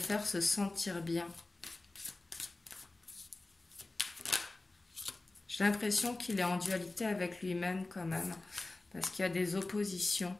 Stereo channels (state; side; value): quieter; right; 3.0 dB